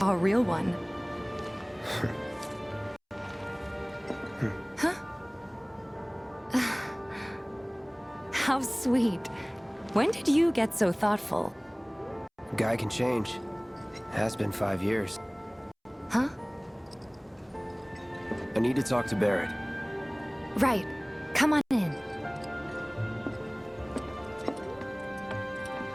a real one. Huh? How sweet. When did you get so thoughtful? Guy can change. Has been 5 years. Huh? I need to talk to Barrett. Right. Come on in.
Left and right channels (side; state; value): both; identical; correlation 1.00